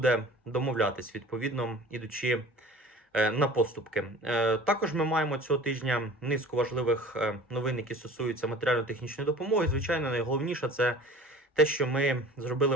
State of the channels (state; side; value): normal; both; correlation 0.43